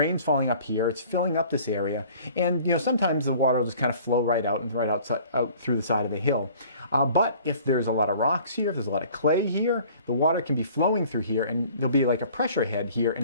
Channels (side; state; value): both; inverted; correlation -0.51